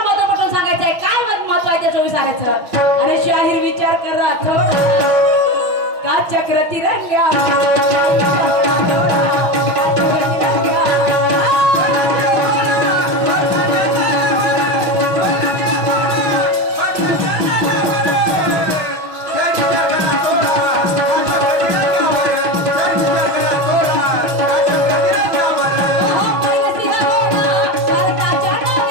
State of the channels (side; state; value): left; late; 5.5 ms